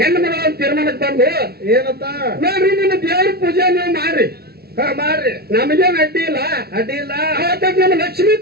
ಮಗಳ ತೀರ್ಮಾನಕ್ಕೆ ಬಂದು ಏನಂತ? ನೋಡ್ರಿ ನಿಮ್ಮ ದೇವ್ರ ಪೂಜೆ ನೀವು ಮಾಡ್ರಿ. ಮಾಡ್ರಿ, ನಮಗೇನ್ ಅಡ್ಡಿ ಇಲ್ಲ. ಅಡ್ಡಿ ಇಲ್ಲ. ಅವತ್ತ ನಮ್ಮ ಲಕ್ಷ್ಮೀ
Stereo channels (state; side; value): late; left; 0.45 ms